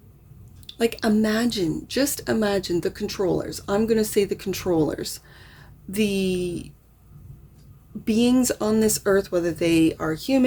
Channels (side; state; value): both; identical; correlation 1.00